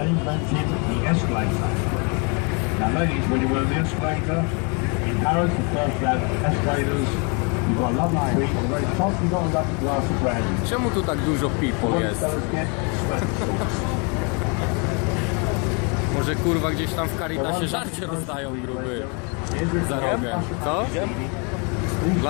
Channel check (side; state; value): right; quieter; 34.2 dB